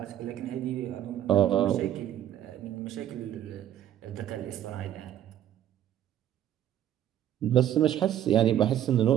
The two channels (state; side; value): quieter; left; 11.2 dB